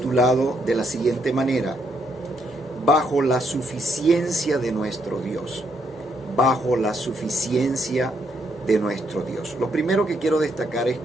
de la siguiente manera: bajo la suficiencia de nuestro Dios. Bajo la suficiencia de nuestro Dios. Lo primero que quiero destacar es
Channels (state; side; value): normal; both; correlation 0.75